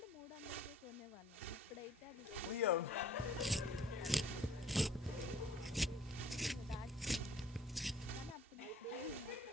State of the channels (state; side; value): normal; both; correlation 0.55